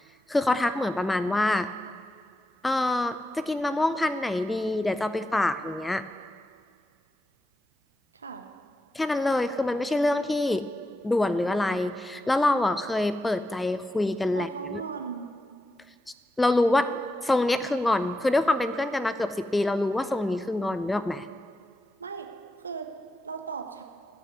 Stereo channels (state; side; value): normal; both; correlation 0.89